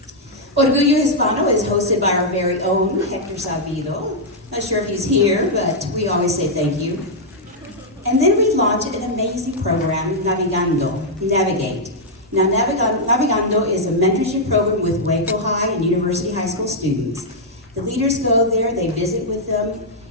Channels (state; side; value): normal; both; correlation -0.05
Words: Orgullo Hispano is hosted by our very own Hector Sabido. Not sure if he's here, but we always say thank you. And then we launched an amazing program, Navigate. Now, Navigando is a mentorship program with Waco High and University High School students. The leaders go there, they visit with them,